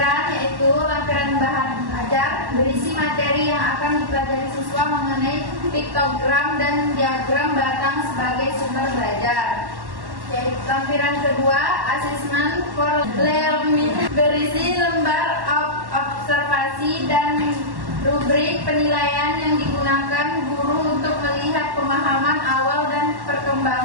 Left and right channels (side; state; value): left; late; 1.1 ms